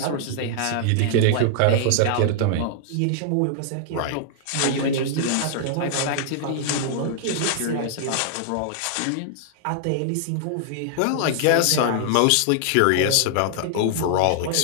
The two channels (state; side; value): different; both; correlation -0.01